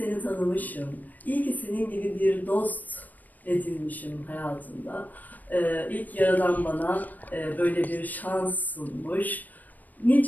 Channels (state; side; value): late; right; 0.084 ms